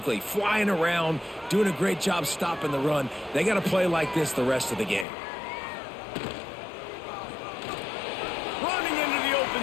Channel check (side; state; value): right; drops out; at 5.1 s